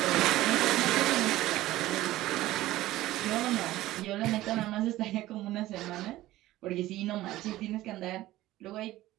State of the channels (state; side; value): quieter; left; 16.1 dB